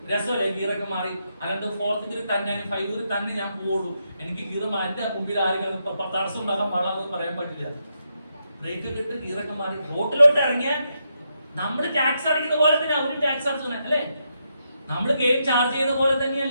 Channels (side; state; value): both; inverted; correlation -0.82